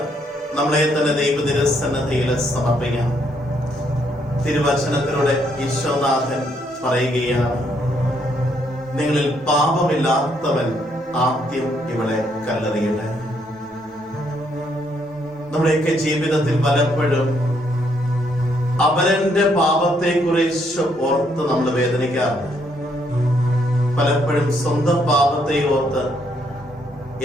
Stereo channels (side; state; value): both; normal; correlation 0.72